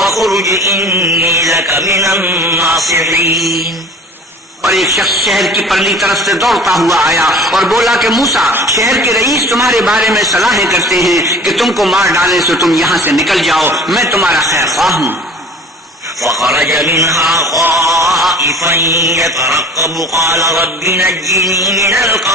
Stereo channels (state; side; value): normal; both; correlation 0.44